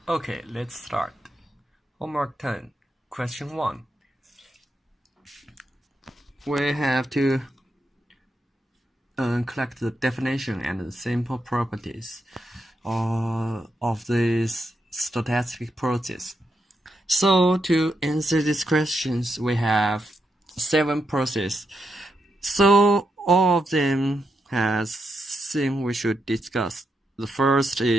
Okay, let's start. Homework 10, question 1. We have to collect the definition and the simple properties of this stochastic process. So to answer these questions, we have 7 processes. So all of them has things we should discuss. The first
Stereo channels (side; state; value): both; normal; correlation 0.84